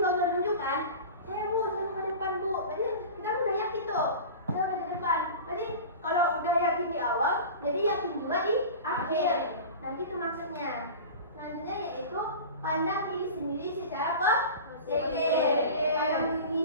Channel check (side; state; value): both; inverted; correlation -0.34